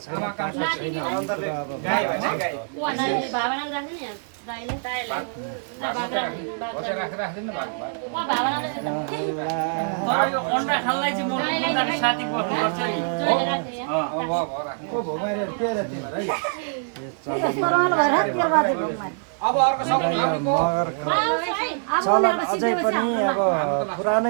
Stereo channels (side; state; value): left; silent; digital silence